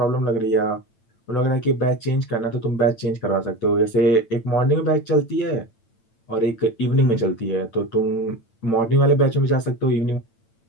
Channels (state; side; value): late; right; 8.9 ms